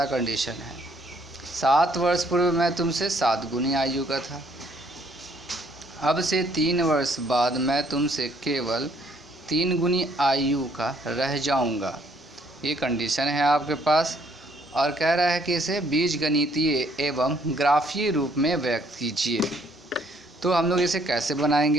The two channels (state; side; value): normal; both; correlation 0.66